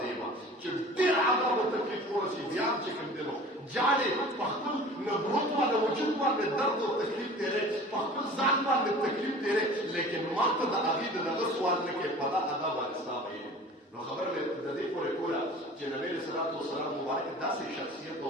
چې ډېر عذاب او تکلیف ورسي بیا چې کوم دی نو جاړې په خپل نبوت باندې وجود باندې درد او تکلیف تېرې په خپل ځان باندې تکلیف تېرې لیکن ما ته د هغې د دغه سوال نه کوې په دا عذاب باندې ستا ویل نو خبره مې د دې پورې کوله چې نبي علیه صلات وسلام مبارک داسې شخصیت او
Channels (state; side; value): normal; both; correlation 0.42